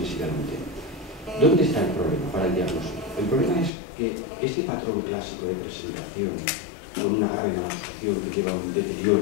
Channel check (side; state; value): right; drops out; at 3.7 s